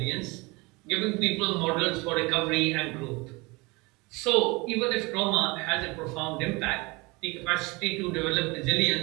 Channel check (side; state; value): left; quieter; 25.3 dB